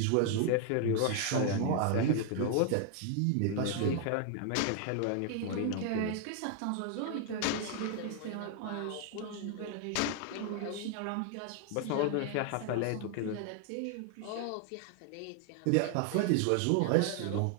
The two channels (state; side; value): different; both; correlation 0.00